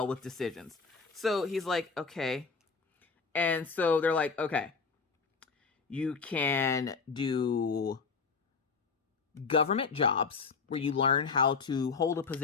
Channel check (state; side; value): quieter; right; 5.0 dB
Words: with decisions. So he's like, okay. And so they're like, okay, you can do government jobs where you learn how to hold a